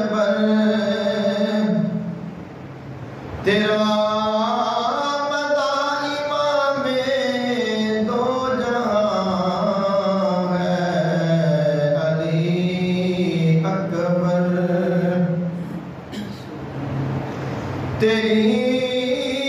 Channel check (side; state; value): both; identical; correlation 1.00